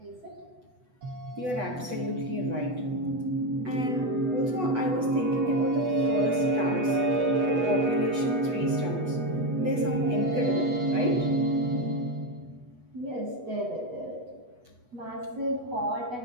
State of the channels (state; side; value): late; left; 8.1 ms